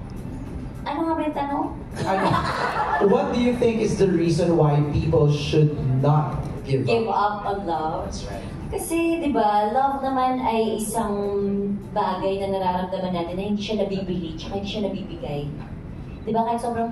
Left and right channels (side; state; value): both; identical; correlation 1.00